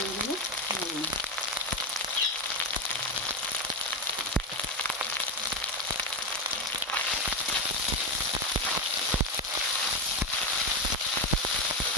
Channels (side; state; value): both; normal; correlation 0.12